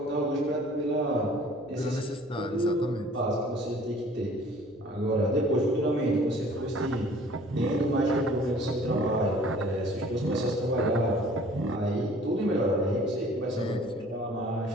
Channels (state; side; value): noise; right; hum, 28 dB below the sound